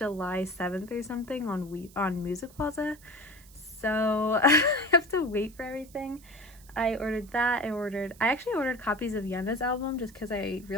7th or something on MusicPlaza. So I have to wait for everything. I ordered that. I actually ordered copies of Yena's album just because I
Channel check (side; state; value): right; noise; hiss, 24 dB below the sound